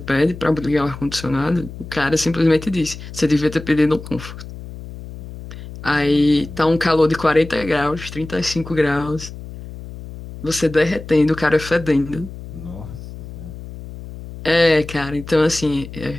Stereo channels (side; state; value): left; noise; hum, 13 dB below the sound